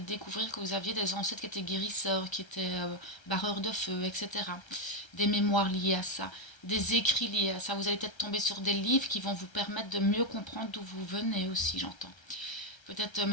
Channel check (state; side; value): late; right; 1.3 ms